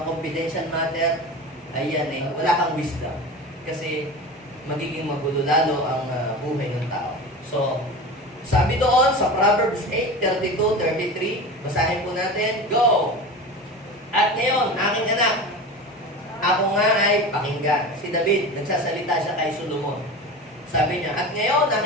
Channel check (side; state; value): both; normal; correlation 0.30